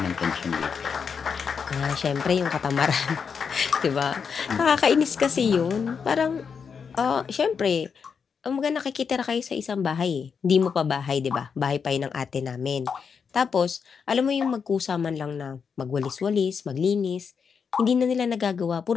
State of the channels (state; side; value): quieter; right; 6.2 dB